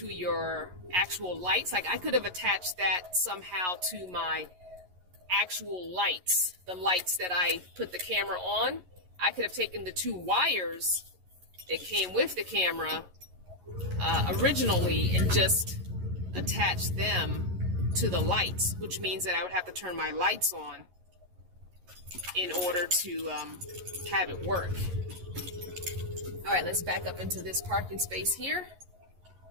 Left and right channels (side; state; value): left; late; 11 ms